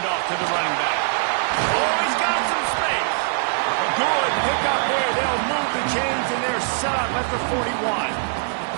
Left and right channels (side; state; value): left; silent; digital silence